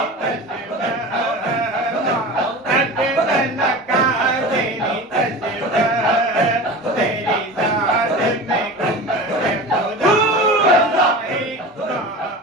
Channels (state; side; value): normal; both; correlation 0.32